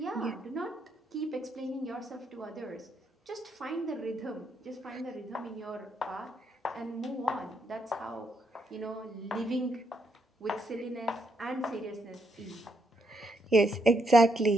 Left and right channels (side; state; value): both; normal; correlation 0.77